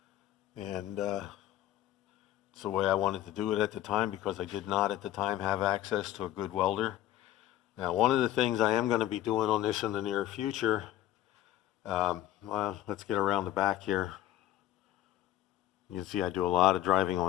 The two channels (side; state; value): right; quieter; 13.2 dB